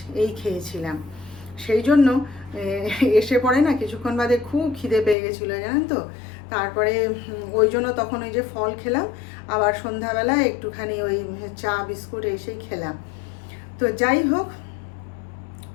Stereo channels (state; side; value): drops out; right; at 5.2 s